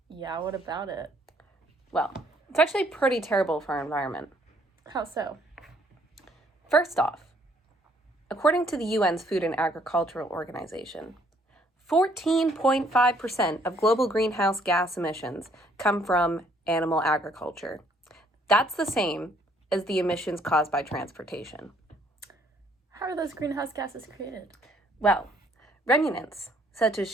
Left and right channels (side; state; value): both; normal; correlation 0.65